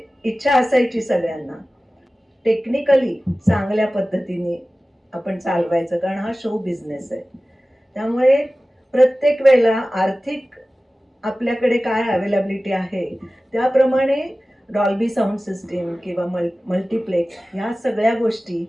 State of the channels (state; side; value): normal; both; correlation 0.96